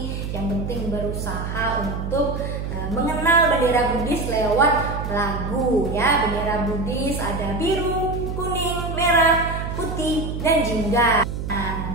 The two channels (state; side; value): noise; right; hum, 5 dB below the sound